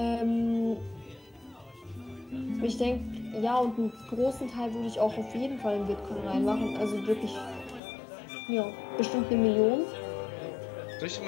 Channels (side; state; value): right; drops out; at 7.8 s